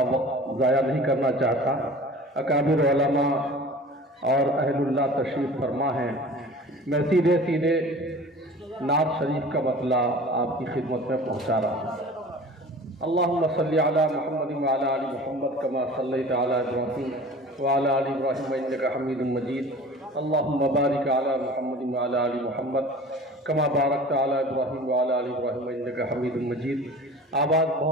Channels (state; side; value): normal; both; correlation 0.42